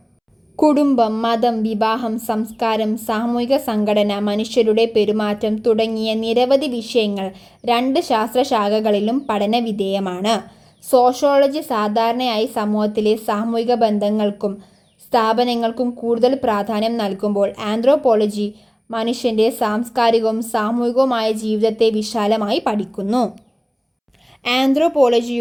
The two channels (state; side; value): identical; both; correlation 1.00